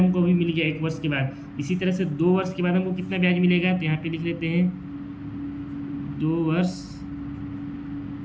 अभी मिल गया 1 वर्ष के बाद। इसी तरह से 2 वर्ष के बाद हमको कितना ब्याज मिलेगा, तो यहाँ पे लिख लेते हैं 2 वर्ष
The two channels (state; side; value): identical; both; correlation 1.00